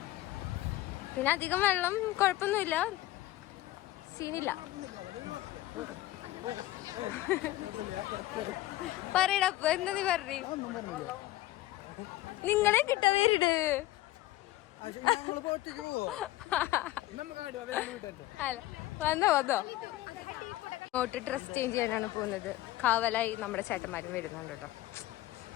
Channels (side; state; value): right; quieter; 16.3 dB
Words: പിന്നെ അധികം വെള്ളം കുഴപ്പമൊന്നുമില്ല, സീനില്ല. പറയടപ്പ എന്താ നീ പറഞ്ഞു? നിങ്ങളെ കിട്ട വീട് വന്നോ വന്നോ. ഇങ്ങോട്ട് ഡ്രസ് ചേഞ്ച് ചെയ്യാനാണ് പോകുന്നത്. കാവലായി നമ്മുടെ ചേട്ടന്മാരും വരുന്നുണ്ട് കേട്ടോ.